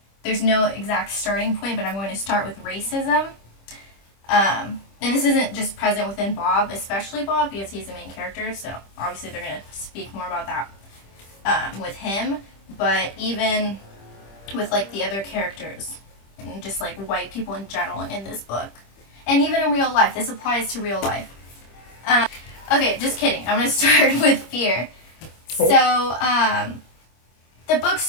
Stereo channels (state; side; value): late; right; 25 ms